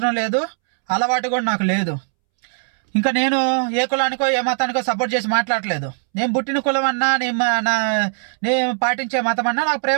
లేదు, అలవాటు కూడా నాకు లేదు. ఇంకా నేను ఏ కులానికో ఏ మతానికో సపోర్ట్ చేసి మాట్లాడలేదు. నేను పుట్టిన కులం అన్నా, నేను పాటించే మతం అన్నా నాకు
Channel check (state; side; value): silent; left; 66 dB below the other